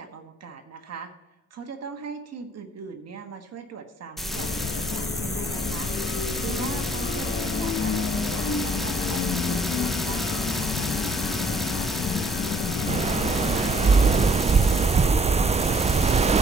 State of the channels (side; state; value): both; normal; correlation 0.62